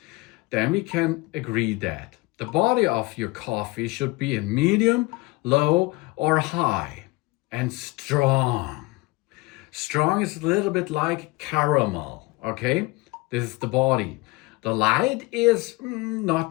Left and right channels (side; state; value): right; quieter; 22.7 dB